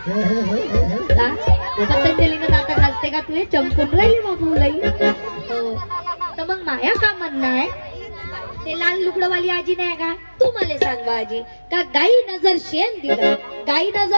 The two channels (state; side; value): inverted; both; correlation -1.00